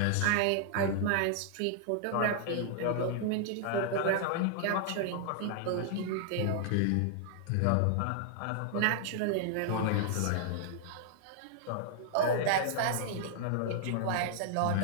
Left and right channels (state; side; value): different; both; correlation -0.01